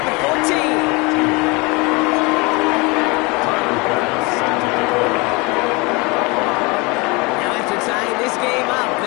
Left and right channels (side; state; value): right; quieter; 26.9 dB